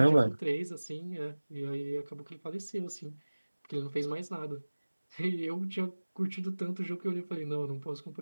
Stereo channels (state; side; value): inverted; both; correlation -1.00